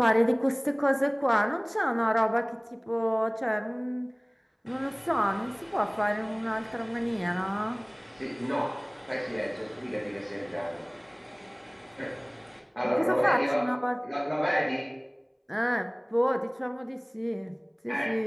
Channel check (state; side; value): identical; both; correlation 1.00